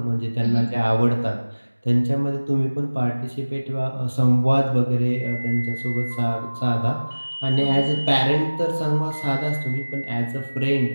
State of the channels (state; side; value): inverted; both; correlation -1.00